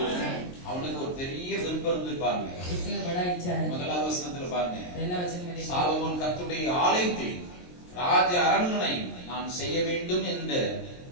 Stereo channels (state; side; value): late; right; 23 ms